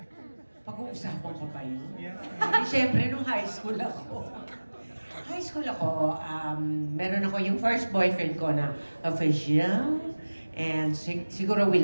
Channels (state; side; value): inverted; both; correlation -1.00